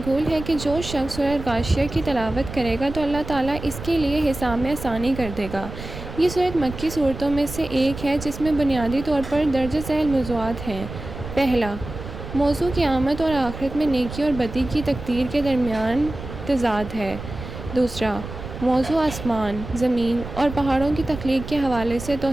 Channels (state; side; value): noise; right; rumble, 10 dB below the sound